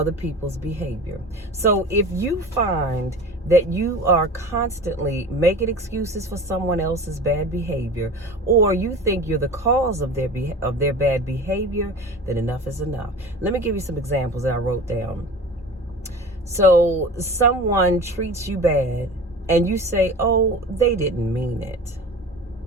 people's behavior. So if you find that you are constantly making excuses for someone else's bad behavior, or you think you're the cause of their bad behavior, then enough is enough. Let me give you some examples that I wrote down. So someone treats you bad and you say, oh, they didn't mean it.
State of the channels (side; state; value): both; normal; correlation 0.36